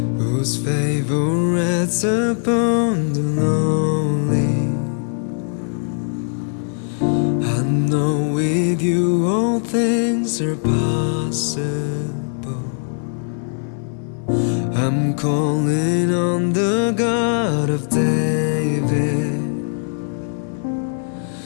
whose favor rests upon the lonely. I know with you all things are possible. I'm calling on the God of David,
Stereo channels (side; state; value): right; silent; 66 dB below the other